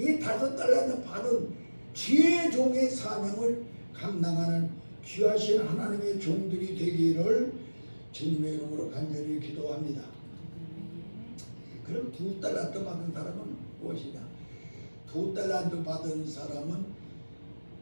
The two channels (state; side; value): inverted; both; correlation -1.00